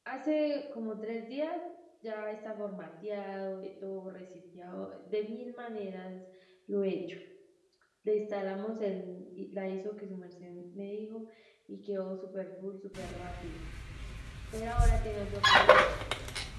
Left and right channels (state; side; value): identical; both; correlation 1.00